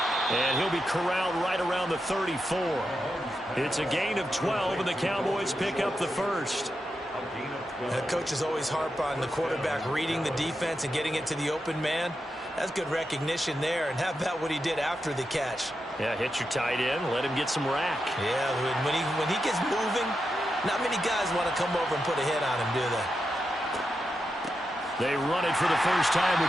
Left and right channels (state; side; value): normal; both; correlation 0.87